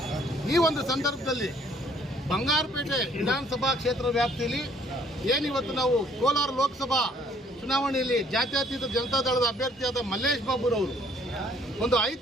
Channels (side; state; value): both; normal; correlation 0.61